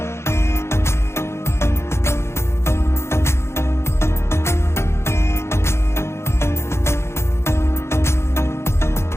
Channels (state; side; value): late; right; 0.13 ms